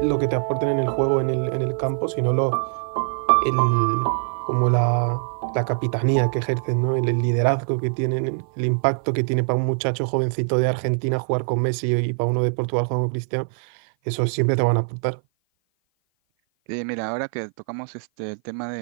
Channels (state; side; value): silent; left; 56 dB below the other